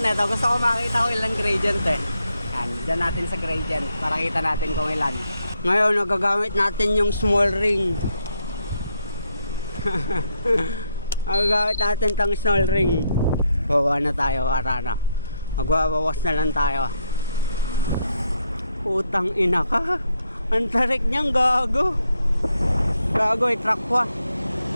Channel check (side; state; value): both; inverted; correlation -0.77